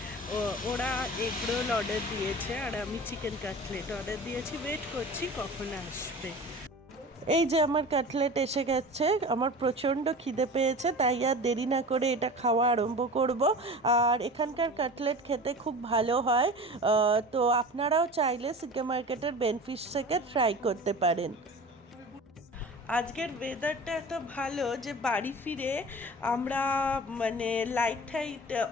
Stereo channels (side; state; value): both; normal; correlation 0.36